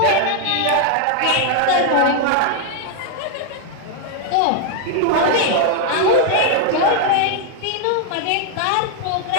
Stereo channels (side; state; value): both; different; correlation 0.00